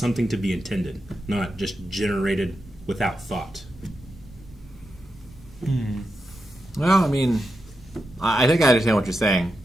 to be intended, not just generated without thought. Well, I mean, I think I understand what you're saying,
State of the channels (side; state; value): both; normal; correlation 0.88